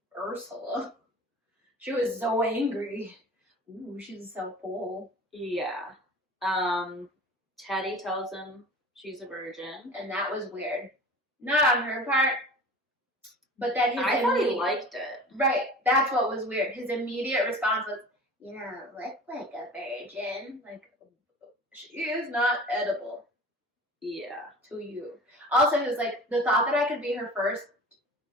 Ursula. She was so angry. Ooh, she's so cool. Yeah. Teddy tells him she's a virgin. And that was weird. Not on her part, but that I thought he liked it. Right, that's what was weird. His immediate response was, you don't look like a virgin. Like, she is not edible. Yeah. To you. Also, it was like, the thought that I could be her first,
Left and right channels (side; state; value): both; normal; correlation 0.39